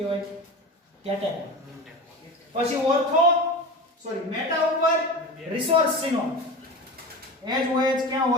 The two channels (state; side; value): normal; both; correlation 0.29